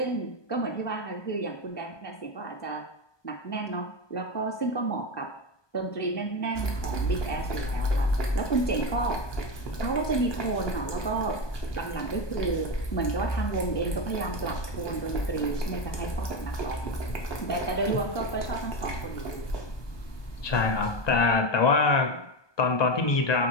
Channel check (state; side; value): late; right; 1.2 ms